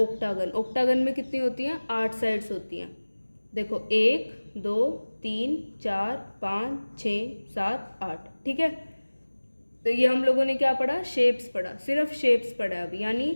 ओक्टागन में कितनी होती हैं? 8 साइड्स होती हैं। देखो, 1 2 3 4 5 6 7 8। ठीक है, तो ये हम लोगों ने क्या पढ़ा? शेप्स पढ़ा, सिर्फ शेप्स पढ़ा अभी, यानी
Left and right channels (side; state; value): both; inverted; correlation -1.00